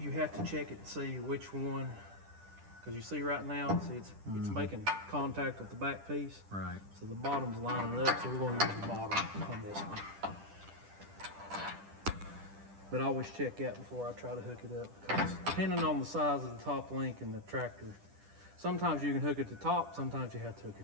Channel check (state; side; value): late; left; 10 ms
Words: you have to check it to see which one, because you see right now, see it's making contact with the back piece. Right. So the bottom's lining up, so we're going to use the bottom on this one. But I always check that before I try to hook it up, because depending on the size of the top link in the tractor, sometimes you can hook it to top, sometimes you have to hook